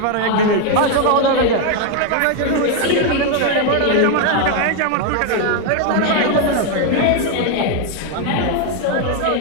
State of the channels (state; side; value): different; both; correlation 0.01